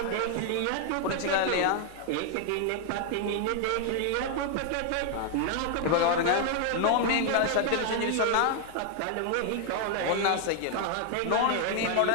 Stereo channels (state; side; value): different; both; correlation 0.00